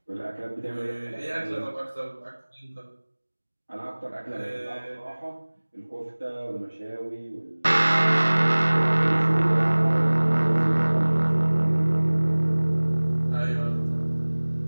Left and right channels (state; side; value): inverted; both; correlation -1.00